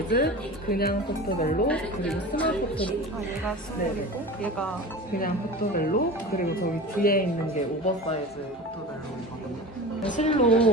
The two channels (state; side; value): normal; both; correlation 0.33